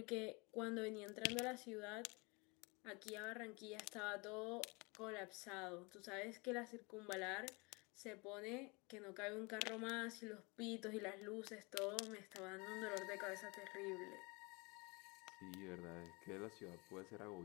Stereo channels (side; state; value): right; quieter; 28.1 dB